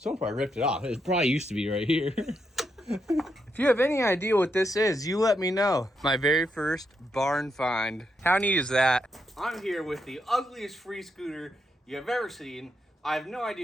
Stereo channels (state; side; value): normal; both; correlation 0.81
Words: probably ripped it off. It probably used to be right here. If you have any idea what this is, you let me know. My very first barn find. How neat is that? I'm here with the ugliest free scooter you have ever seen. I have no